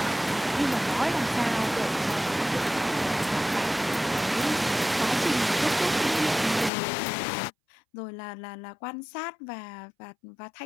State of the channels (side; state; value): right; drops out; at 6.7 s